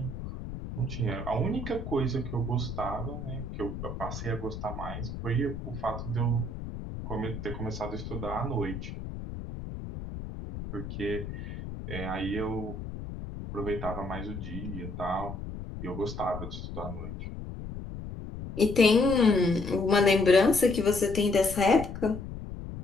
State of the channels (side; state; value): left; noise; rumble, 8 dB below the sound